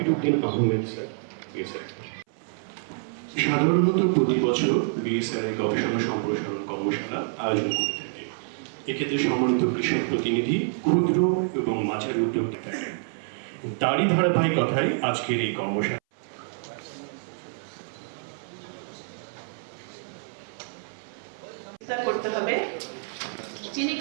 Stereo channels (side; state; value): left; silent; 60 dB below the other